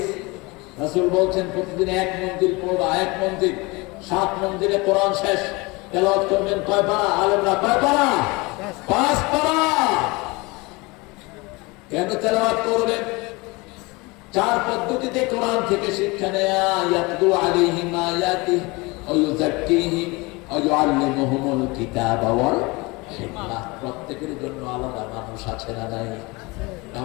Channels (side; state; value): right; quieter; 25.0 dB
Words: রাসূল বলছেন প্রতিদিন এক মঞ্জিল পড়বা। এক মঞ্জিল, 7 মঞ্জিলে কোরআন শেষ। তেলাওয়াত করবেন কয় পারা? আলেমরা কয় পারা? 5 পারা। কেন তেলাওয়াত করবেন? 4 পদ্ধতিতে কোরআন থেকে শিক্ষা নেয়া। ইয়াতলু আলাইহিম আয়াতিহি ওয়া ইউযাক্কিহিম ওয়া ইউআল্লিমুহুমুল কিতাবা ওয়াল হিকমাহ। প্রত্যেকের জন্য আলাদা মানুষ আছে না নাই?